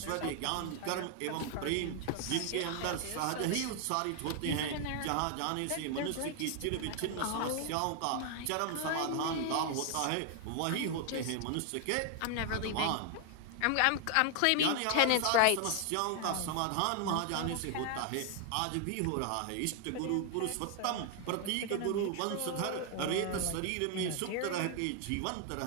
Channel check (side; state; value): both; different; correlation 0.00